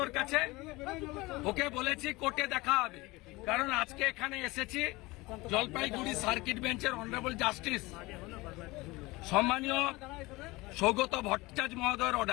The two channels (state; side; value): quieter; right; 22.0 dB